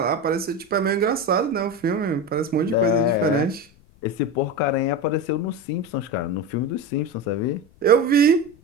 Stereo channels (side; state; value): left; noise; rumble, 29 dB below the sound